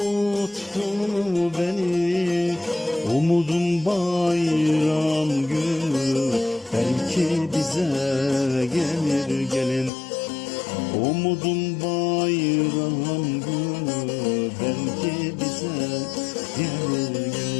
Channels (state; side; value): drops out; right; at 9.9 s